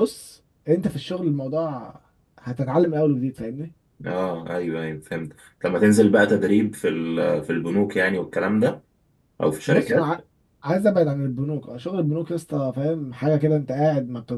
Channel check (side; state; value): both; identical; correlation 1.00